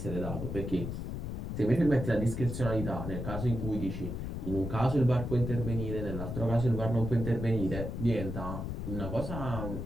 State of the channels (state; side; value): noise; left; rumble, 5 dB below the sound